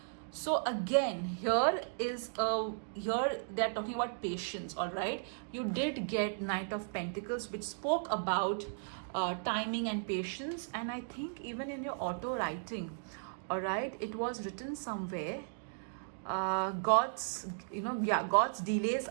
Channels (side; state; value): left; silent; digital silence